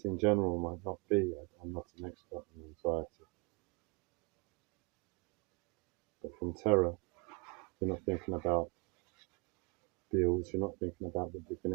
in general might not be, I'm not an expert in anxiety, but from terror, you're not thinking about bills, you're not thinking about what you're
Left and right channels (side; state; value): left; quieter; 30.9 dB